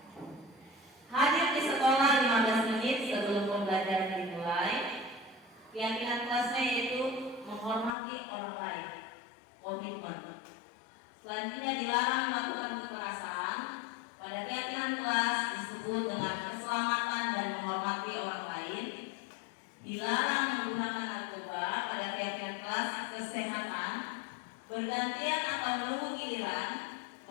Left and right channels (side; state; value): right; drops out; at 7.9 s